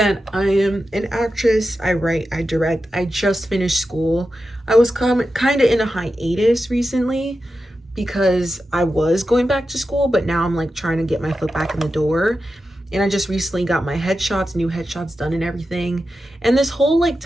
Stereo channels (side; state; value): both; normal; correlation 0.91